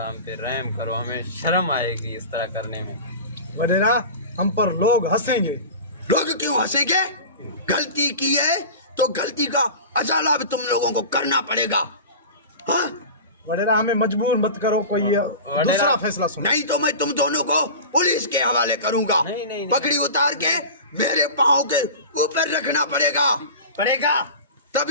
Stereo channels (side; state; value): both; inverted; correlation -0.32